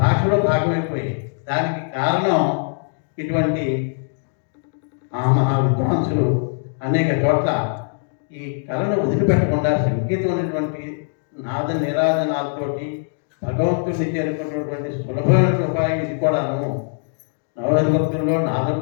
భాషలో భాగమైపోయాయి. దానికి కారణం ఇటువంటి మహా విద్వాంసులు అనేక చోట్ల ఈ కళను వదిలిపెట్టకుండా సంగీతం అనేటువంటి నాద నిరాధనాలతోటి భగవంతుడిని చేరుకున్నటువంటి సులభమైన ఉపాయం ఇది కూడాను. నవభక్తుల్లో నాదం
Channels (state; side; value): silent; right; digital silence